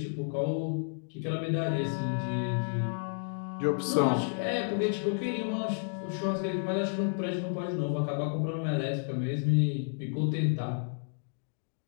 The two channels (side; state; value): right; silent; digital silence